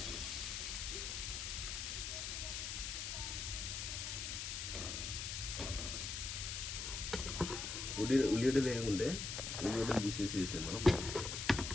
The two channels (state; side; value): noise; left; hiss, 4 dB below the sound